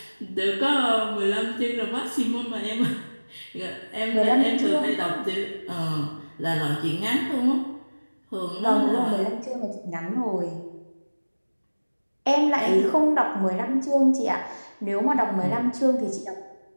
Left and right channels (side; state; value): both; inverted; correlation -1.00